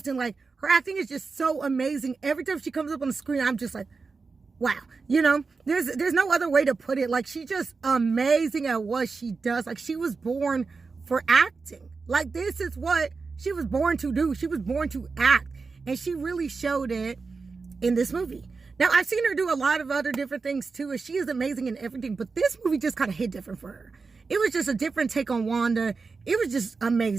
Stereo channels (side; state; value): left; quieter; 4.5 dB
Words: like, her acting is just so amazing. Every time she comes up on the screen, I'm just like, wow, you know, there's no other way to put it. Like, she's just amazing at what she does. Like, she was born for acting. Like, this is what she was born to do. She was born to act, and she really showed it in this movie. Now, I've seen her do a lot of other different things too, and she is amazing in everything, but this movie just kind of hit different for her. It was just a different take on Wanda. It was just